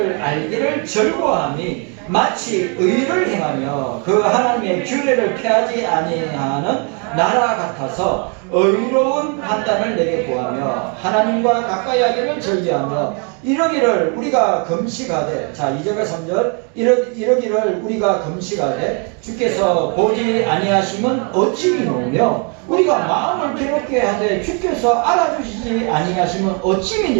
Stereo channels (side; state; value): left; quieter; 37.3 dB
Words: 알기를 즐거워하니 마치 의를 행하며 그 하나님의 규례를 폐하지 아니하는 나라 같아서 의로운 판단을 내게 구하며 하나님과 가까이 하기를 즐겨하며 이러기를 우리가 금식하되, 자 2절과 3절 이러기를 우리가 금식하되 주께서 보지 아니하심은 어찌 미노며 우리가 마음을 괴롭게 하되 주께서 알아주시지 아니하심은 어찌